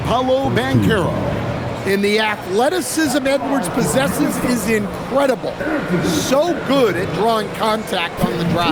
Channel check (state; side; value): identical; both; correlation 1.00